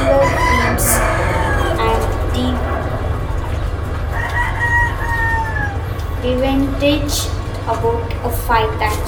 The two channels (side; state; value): both; identical; correlation 1.00